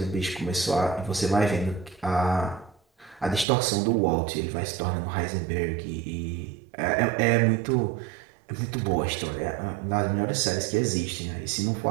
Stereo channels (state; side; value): drops out; left; at 3.5 s